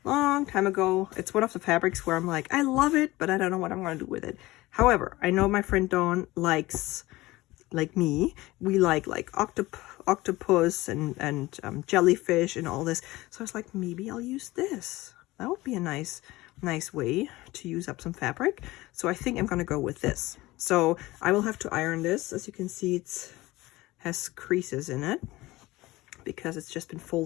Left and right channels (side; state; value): right; quieter; 19.2 dB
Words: long time ago. It's one of the fabrics where I'm like, I love it, but I don't know what I'm going to do with it. However, I know my friend Dawn likes, like me, we like octopus and jellyfish and all this. So I was like, maybe I'll use this. That would be a nice way to use up some fabric. So I think I'm going to go with this. So I will have to iron this. As you can see, it has creases in it because it's just been